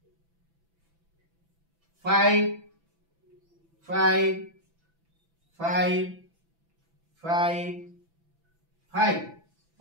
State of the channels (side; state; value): left; late; 6.0 ms